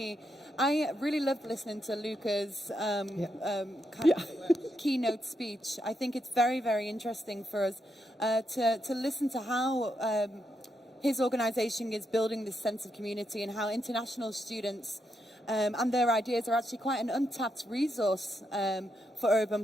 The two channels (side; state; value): both; normal; correlation 0.81